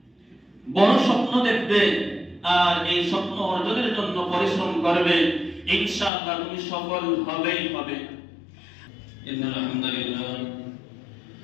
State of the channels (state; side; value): drops out; right; at 6.1 s